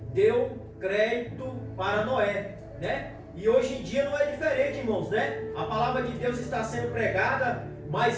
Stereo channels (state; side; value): identical; both; correlation 1.00